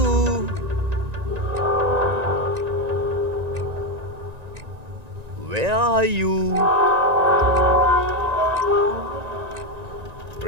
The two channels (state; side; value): late; left; 1.9 ms